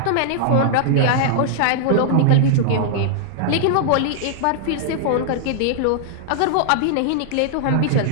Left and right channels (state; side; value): different; both; correlation -0.01